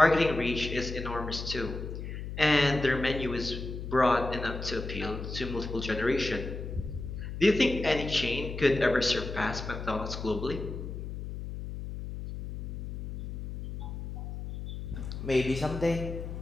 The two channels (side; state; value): left; noise; hum, 7 dB below the sound